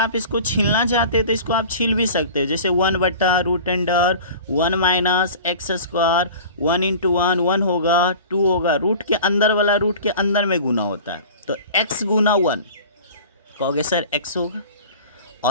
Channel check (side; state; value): both; inverted; correlation -0.39